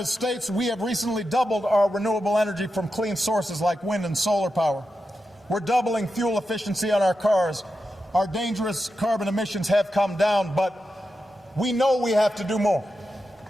States, we have recently doubled our renewable energy from clean sources like wind and solar power. We're doubling fuel efficiency on our cars. Our dangerous carbon emissions have come down, but we know we have to do more.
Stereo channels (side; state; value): both; normal; correlation 0.89